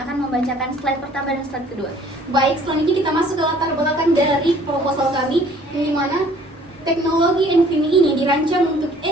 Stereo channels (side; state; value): both; normal; correlation 0.56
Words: akan membacakan slide pertama dan slide kedua. Baik, selanjutnya kita masuk ke latar belakang dari proposal kami, yang dimana teknologi NVMe ini dirancang untuk